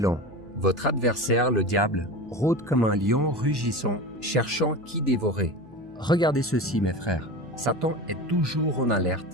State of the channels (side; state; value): left; noise; hum, 26 dB below the sound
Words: Votre adversaire, le diable, rôde comme un lion rugissant, cherchant qui dévorer. » Regardez ceci, mes frères. Satan est toujours en